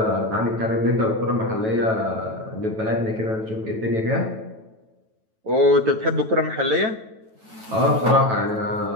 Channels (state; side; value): late; left; 9.1 ms